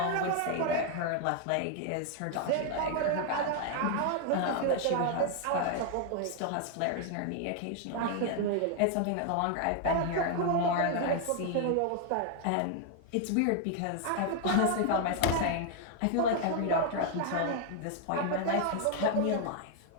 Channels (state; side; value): different; both; correlation 0.00